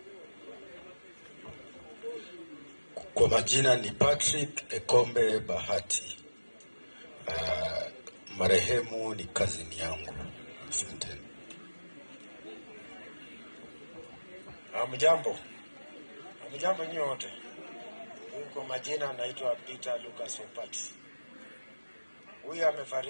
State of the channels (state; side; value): inverted; both; correlation -1.00